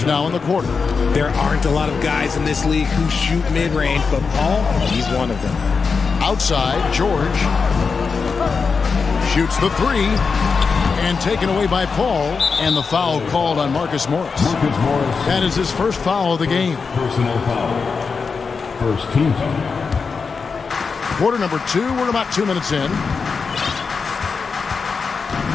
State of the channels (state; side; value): quieter; right; 5.1 dB